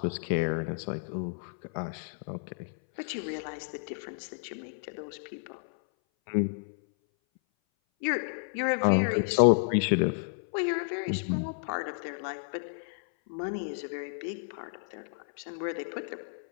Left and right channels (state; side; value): silent; right; 57 dB below the other